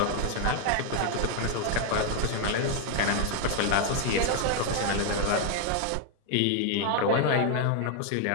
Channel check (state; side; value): different; both; correlation 0.00